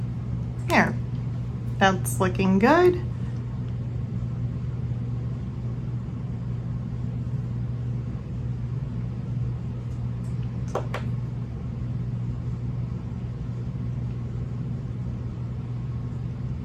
There, that's looking good.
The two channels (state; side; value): identical; both; correlation 1.00